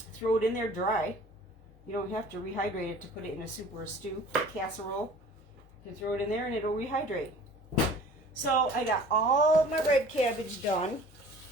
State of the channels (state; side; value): normal; both; correlation 0.46